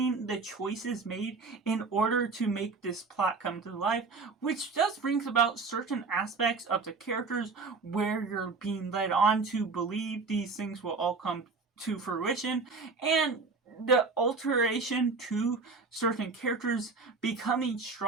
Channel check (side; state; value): left; quieter; 4.3 dB